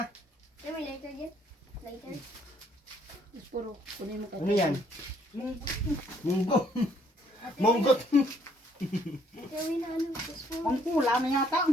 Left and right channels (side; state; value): both; normal; correlation 0.66